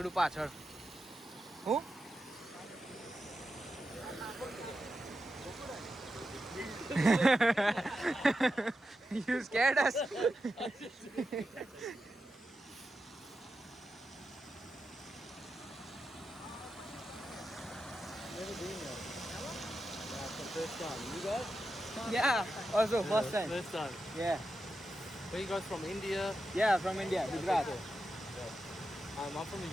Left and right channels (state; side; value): normal; both; correlation 0.89